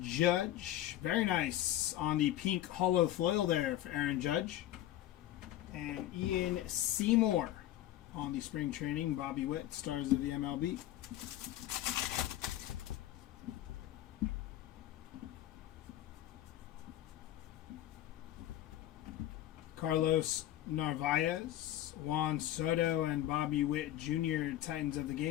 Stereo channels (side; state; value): right; quieter; 13.4 dB